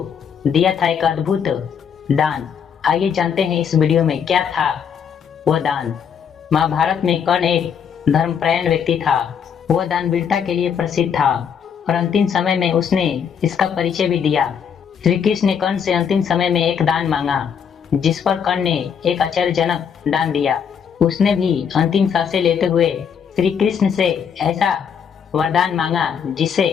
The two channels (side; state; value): right; quieter; 7.4 dB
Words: दिया था एक अद्भुत दान। आइए जानते हैं इस वीडियो में क्या था वह दान। महाभारत में कर्ण एक धर्मपरायण व्यक्ति था। वह दानवीरता के लिए प्रसिद्ध था और अंतिम समय में उसने इसका परिचय भी दिया। श्री कृष्ण ने कर्ण से अंतिम समय में एक दान मांगा, जिस पर कर्ण ने एक आश्चर्यजनक दान दिया। उसने भी अंतिम सांसें लेते हुए श्री कृष्ण से ऐसा वरदान मांगा जिसे